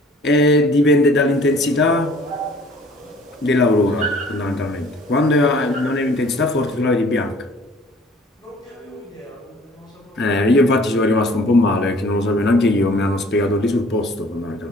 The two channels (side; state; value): both; normal; correlation 0.53